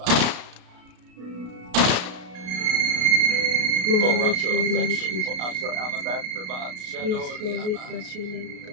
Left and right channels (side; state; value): left; late; 33 ms